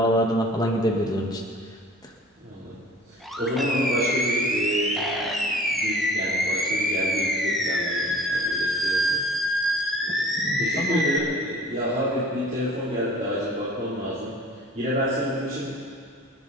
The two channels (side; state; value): both; normal; correlation 0.47